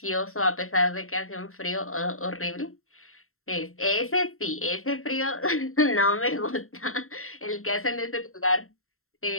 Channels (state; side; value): late; right; 0.62 ms